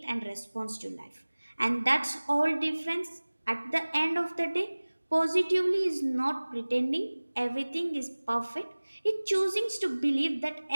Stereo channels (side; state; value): both; inverted; correlation -1.00